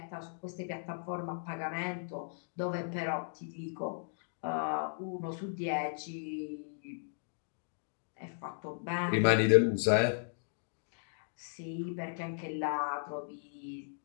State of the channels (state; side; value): silent; right; digital silence